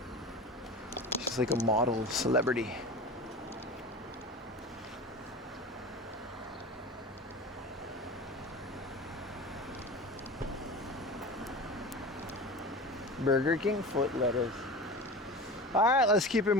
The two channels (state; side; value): normal; both; correlation 0.32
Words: She's like a model celebrity. Burger King foot lettuce. All right, let's keep it